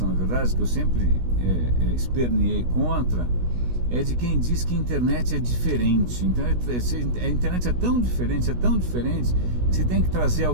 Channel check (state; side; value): late; left; 16 ms